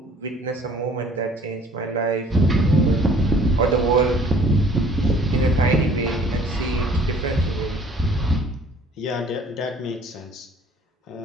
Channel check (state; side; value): normal; both; correlation 0.54